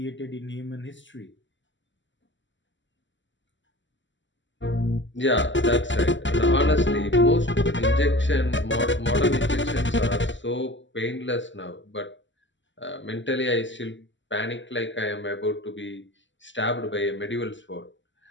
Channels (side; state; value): right; late; 0.54 ms